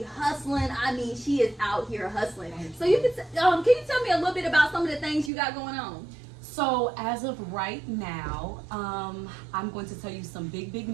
hustling, I mean she is out here hustling. So can you tell me a little bit about some of the things you got going on? So, as of right now, I'm going to tell you some big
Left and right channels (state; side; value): drops out; left; at 5.3 s